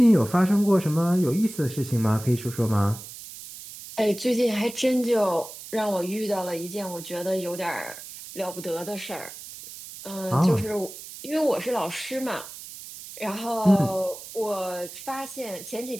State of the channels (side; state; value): right; noise; hiss, 13 dB below the sound